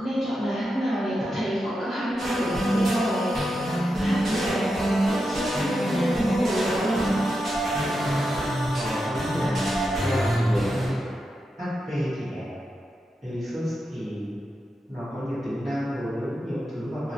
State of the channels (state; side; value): normal; both; correlation 0.88